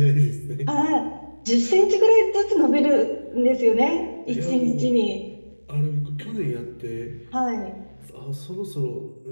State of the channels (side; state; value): both; inverted; correlation -1.00